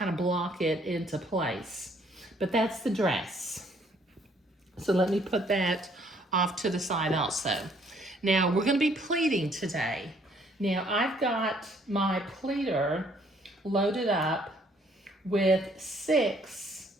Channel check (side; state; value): both; normal; correlation 0.64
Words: of block it into place. But that's the dress. So let me put that off to the side also. Now we're going to be pleating today. Now I've got my pleater loaded up with 6